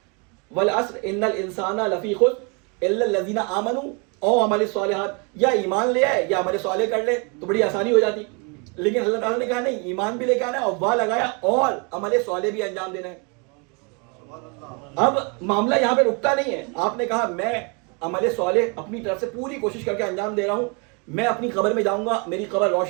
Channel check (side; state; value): left; quieter; 33.0 dB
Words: والعصر ان الانسان لفی خسر الا الذین آمنوا او عمل الصالحات, یا ایمان لے آئے یا عمل صالح کر لے تو بڑی آسانی ہو جاتی. لیکن اللہ تعالیٰ نے کہا نہیں, ایمان بھی لے کے آنا ہے اور وا لگایا اور عمل صالح بھی انجام دینا ہے. اب معاملہ یہاں پہ رکتا نہیں ہے, آپ نے کہا میں عمل صالح اپنی طرف سے پوری کوشش کر کے انجام دے رہا ہوں, میں اپنی قبر میں جاؤں گا, میری قبر